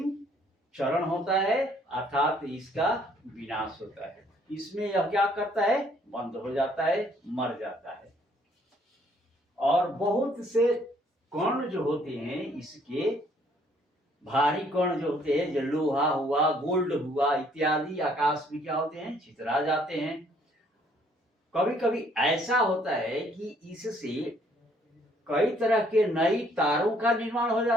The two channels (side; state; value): both; normal; correlation 0.64